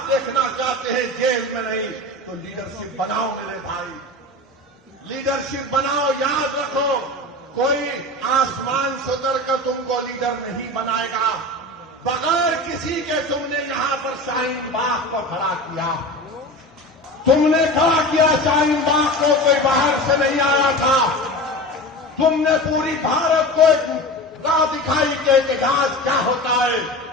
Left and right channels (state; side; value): normal; both; correlation 0.31